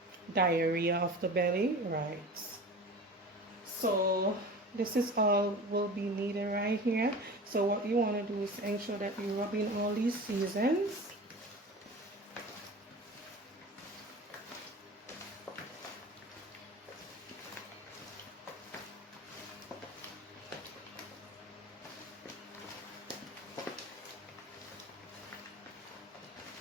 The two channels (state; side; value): normal; both; correlation 0.35